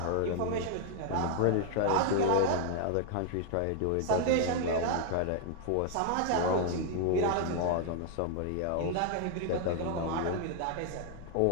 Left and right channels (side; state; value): both; different; correlation 0.00